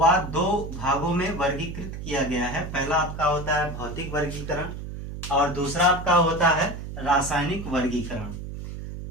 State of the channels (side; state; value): right; noise; hum, 9 dB below the sound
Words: 2 भागों में वर्गीकृत किया गया है। पहला आपका होता है भौतिक वर्गीकरण और दूसरा आपका होता है रासायनिक वर्गीकरण।